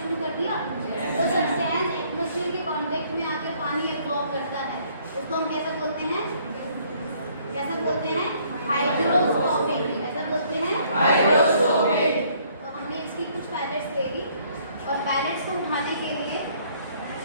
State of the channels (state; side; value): inverted; both; correlation -0.63